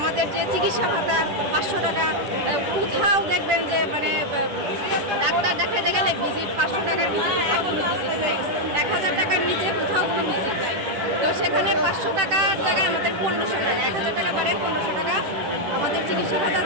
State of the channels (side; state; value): left; late; 10 ms